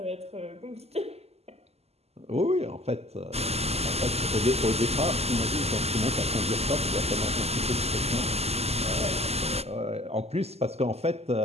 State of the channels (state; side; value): late; left; 0.30 ms